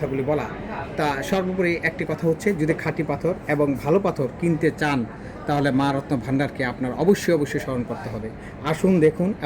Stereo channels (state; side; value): identical; both; correlation 1.00